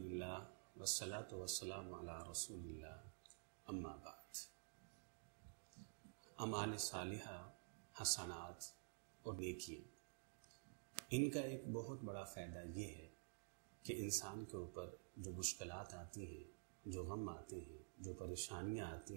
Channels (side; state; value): left; silent; digital silence